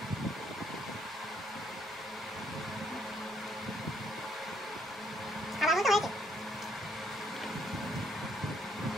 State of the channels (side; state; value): right; noise; rumble, 28 dB below the sound